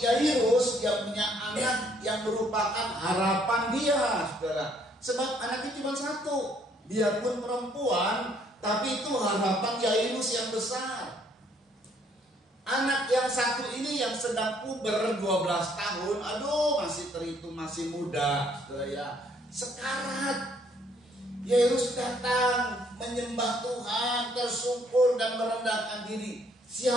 dia punya anak yang merupakan harapan dia, saudara. Sebab anaknya cuma satu. Dia pun perempuan, tapi itu harapan Yairus yang besar. Anak yang satu ini yang sedang puber 12 tahun, aduh masih terhitung masih muda, saudara ya. Sekarat. Yairus datang menyembah Tuhan, tersungkur dan merendahkan diri.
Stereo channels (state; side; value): normal; both; correlation 0.65